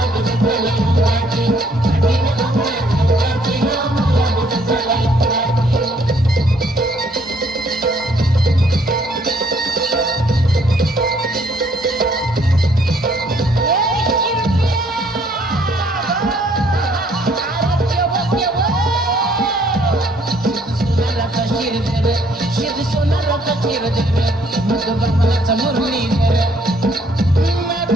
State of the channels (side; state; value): both; normal; correlation 0.65